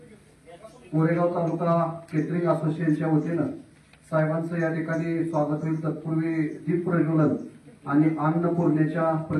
कोरेगाव तालुका केटरिंग असोसिएशनच्या वतीनं साहेबांचं या ठिकाणी स्वागत होईल। तत्पूर्वी दीप प्रज्वलन आणि अन्नपूर्णेच्या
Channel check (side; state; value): both; identical; correlation 1.00